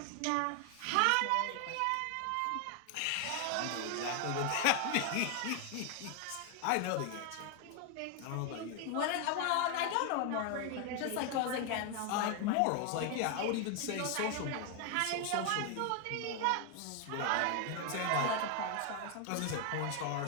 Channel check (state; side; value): different; both; correlation 0.00